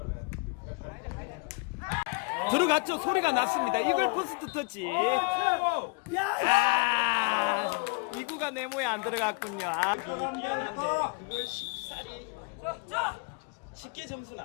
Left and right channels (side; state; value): right; quieter; 31.1 dB